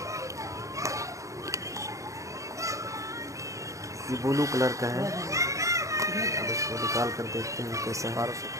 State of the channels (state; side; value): late; left; 0.15 ms